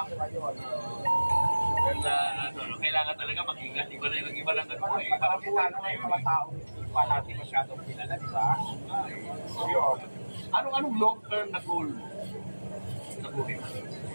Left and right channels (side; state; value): both; inverted; correlation -1.00